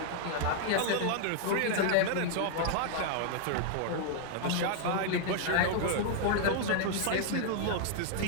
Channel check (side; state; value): both; different; correlation -0.01